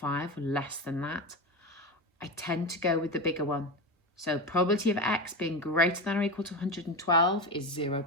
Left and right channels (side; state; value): both; normal; correlation 0.20